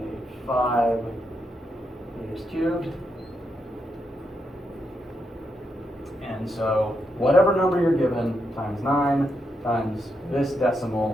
meters cubed. And so whatever number you're given times 9 times this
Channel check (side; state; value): both; normal; correlation 0.82